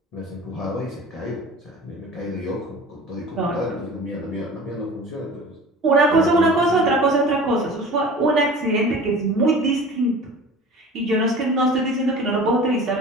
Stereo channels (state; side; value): normal; both; correlation 0.40